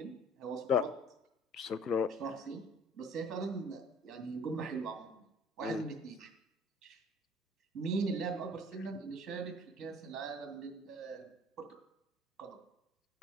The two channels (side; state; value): both; normal; correlation 0.51